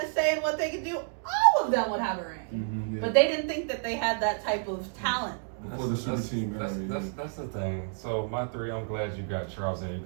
a say in what they could do, I would of them would have a ring. Yeah. But they didn't think that they had that type of talent. Before the super team era. That's the thing. So my three, I'm glad you got Charles in. You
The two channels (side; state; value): left; silent; 58 dB below the other